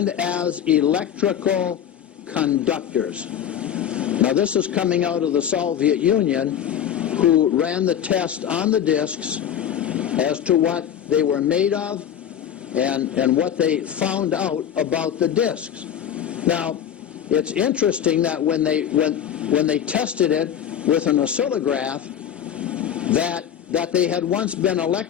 as electrical conductors. Now this is coming out of the Soviet Union, who ran the test on the discs as to what they were made of and what they found out about the discs. Now, it's interesting that when they tested it with an oscillograph, that they had once been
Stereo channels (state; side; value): quieter; right; 9.4 dB